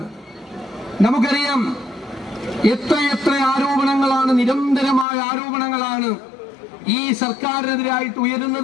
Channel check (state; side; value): drops out; right; at 5.1 s